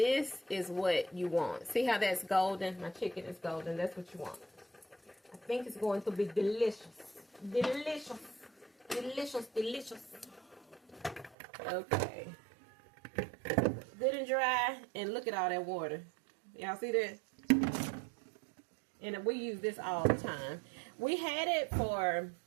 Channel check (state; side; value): drops out; left; at 11.4 s